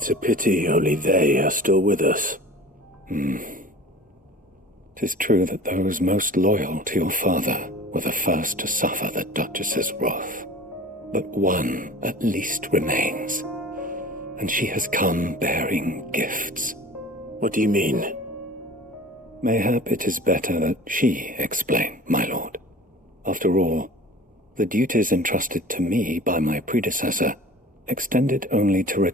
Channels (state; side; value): normal; both; correlation 0.41